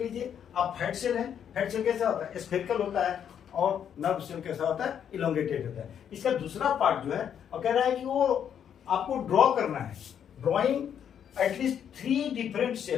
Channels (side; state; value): right; quieter; 8.7 dB